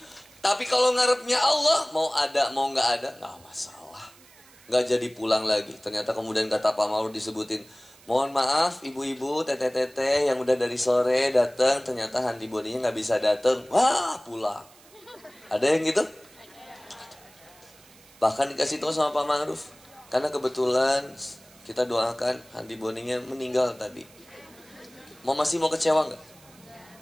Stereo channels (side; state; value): right; noise; hiss, 25 dB below the sound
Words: Tapi kalau ngarepnya Allah, mau ada mau nggak ada, nggak masalah. Nggak jadi pulang lagi. Ternyata kemudian kata Pak Ma'ruf disebutin, mohon maaf ibu-ibu, teteh-teteh yang udah dari sore datang, ternyata Handi Boninya nggak bisa datang. Wah, pulang. Ada yang gitu? Bahkan dikasih tahu sama Pak Ma'ruf. Karena kebetulan kita doakan Handi Boninya meninggal tadi. Masih mau kecewa nggak?